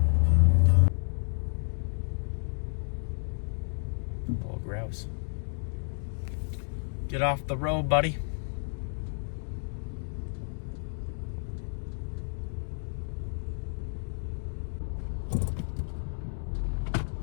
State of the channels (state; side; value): silent; right; digital silence